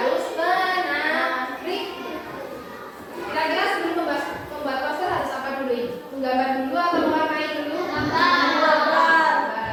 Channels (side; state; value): both; identical; correlation 1.00